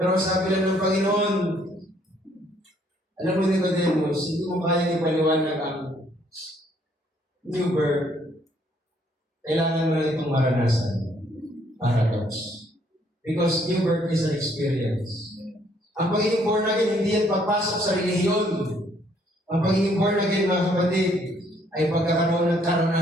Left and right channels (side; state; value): both; normal; correlation 0.66